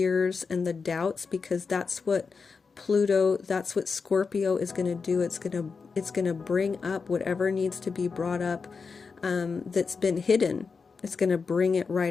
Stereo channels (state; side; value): quieter; right; 5.0 dB